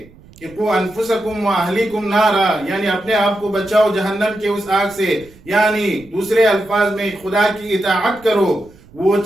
کہ قُوْ أَنفُسَكُمْ وَأَهْلِيكُمْ نَارًا، یعنی اپنے آپ کو بچاؤ جہنم کے اس آگ سے، یعنی دوسرے الفاظ میں خدا کی اطاعت کرو، وہ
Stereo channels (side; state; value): right; noise; rumble, 24 dB below the sound